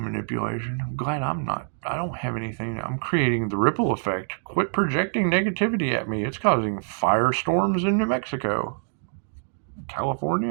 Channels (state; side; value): silent; left; digital silence